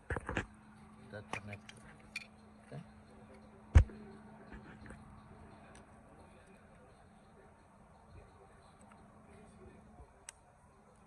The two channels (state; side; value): identical; both; correlation 1.00